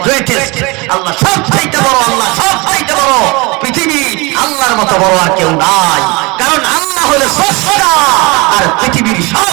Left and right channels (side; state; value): left; quieter; 26.1 dB